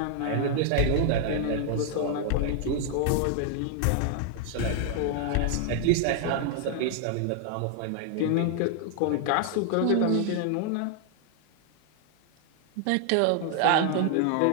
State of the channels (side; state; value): both; different; correlation 0.00